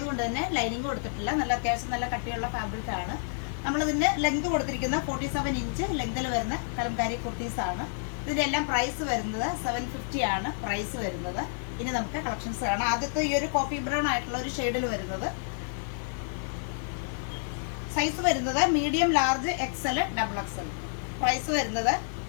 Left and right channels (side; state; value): right; silent; digital silence